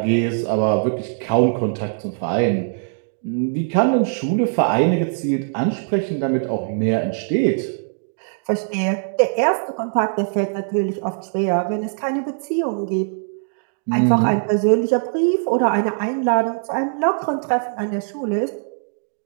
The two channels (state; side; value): silent; left; digital silence